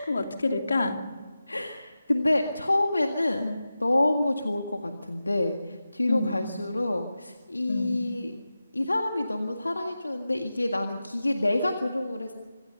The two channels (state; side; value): inverted; both; correlation -0.93